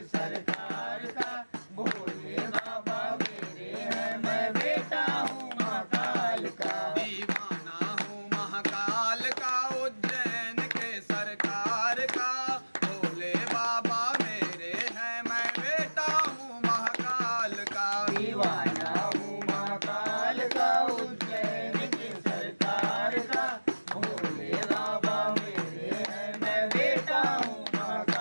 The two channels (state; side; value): inverted; both; correlation -1.00